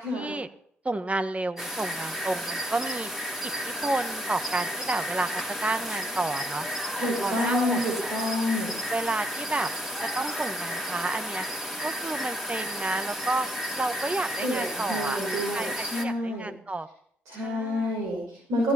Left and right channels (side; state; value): both; normal; correlation 0.72